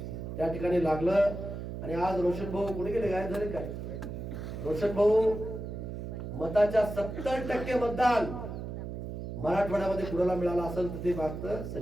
त्या ठिकाणी लागलं. आणि आज रोशन भाऊ कुठे गेले, गायब झाले काय? रोशन भाऊ मताच्या 70% मतदान मराठवाड्यामध्ये कुणाला मिळालं असेल तर ते मागतं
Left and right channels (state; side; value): noise; right; hum, 7 dB below the sound